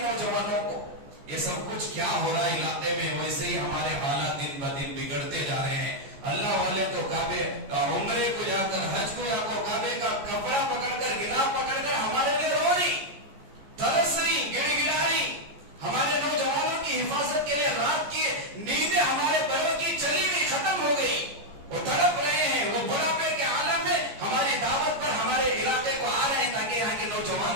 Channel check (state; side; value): late; left; 14 ms